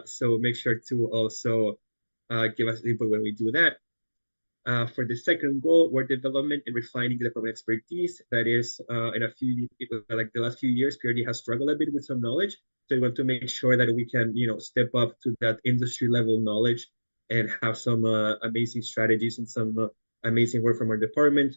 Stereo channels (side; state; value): both; inverted; correlation -1.00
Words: make sure to also give us input when we do that. For the second goal, we're development and refining the department expertise. That is, in the last few years, PRD has struggled a bit with some knowledge. So we want to make sure that we can, step up to that industry level knowledge and have some amazing strategies and some amazing work from our department.